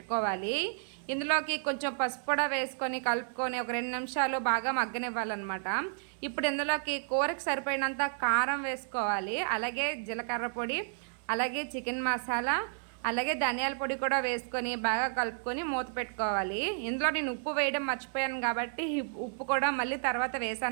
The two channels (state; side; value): silent; left; 57 dB below the other